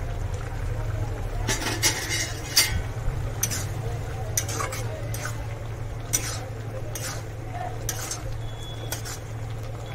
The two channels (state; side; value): identical; both; correlation 1.00